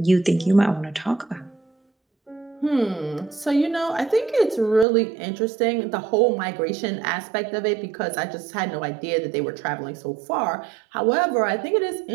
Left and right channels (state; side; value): drops out; left; at 4.9 s